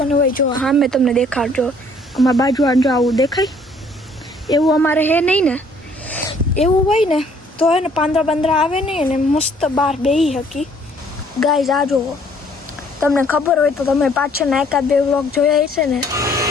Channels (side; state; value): both; normal; correlation 0.61